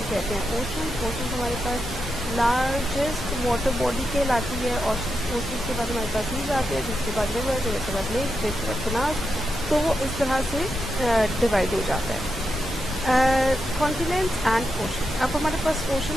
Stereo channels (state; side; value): normal; both; correlation 0.86